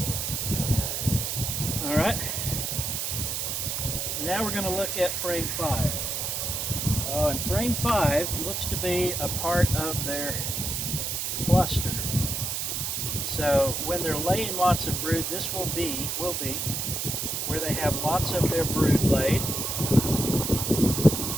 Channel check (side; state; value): right; noise; hiss, 2 dB below the sound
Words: All right, so now we're going to look at frame 5. Oh, and frame 5 looks to be a part of their cluster. So when they're laying lots of brood, this will be where they have lots of their brood laid.